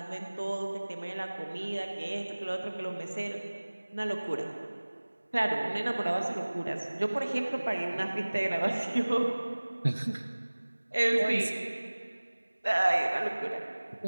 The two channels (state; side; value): inverted; both; correlation -1.00